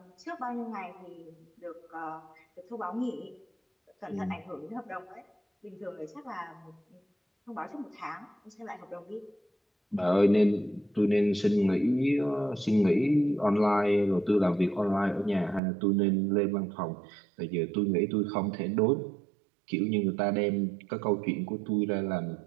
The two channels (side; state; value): left; drops out; at 15.6 s